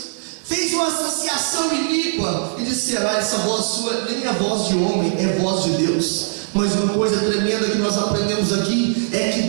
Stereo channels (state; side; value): silent; left; digital silence